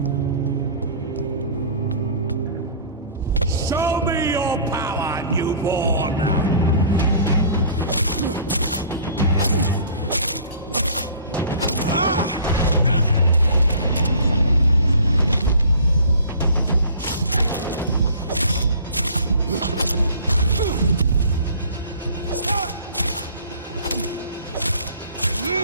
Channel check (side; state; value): both; inverted; correlation -0.48